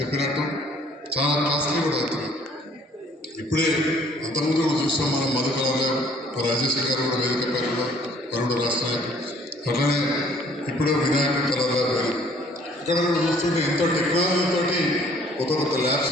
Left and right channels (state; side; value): normal; both; correlation 0.58